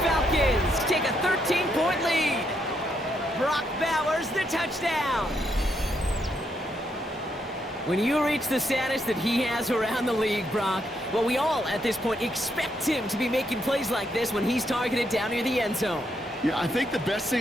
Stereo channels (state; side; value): normal; both; correlation 0.77